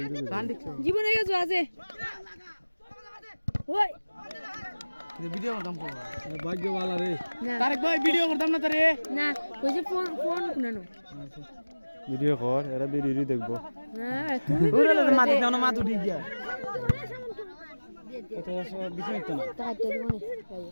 গান জীবনে গেছো আছে ওই ভিডিও করতাম ভাগ্যওয়ালা রে না তারেক ভাই ভিডিও করতাম না তারে না কই যে ফোন কোনানো ভিডিও কর এরা ভিডিও দেখবো হ্যাঁ তুমি ওরে মাটি দাও না মাথা ঠিক গিয়া কত বিছে একটা না টাকা তো দিব না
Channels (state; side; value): inverted; both; correlation -1.00